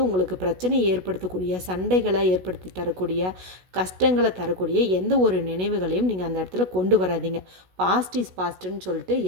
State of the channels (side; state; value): left; late; 16 ms